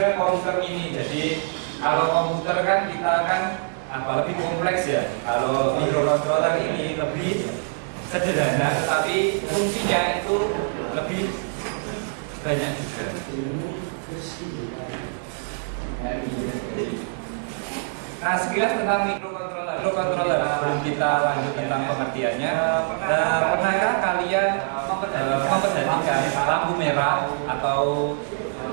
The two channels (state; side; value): silent; left; digital silence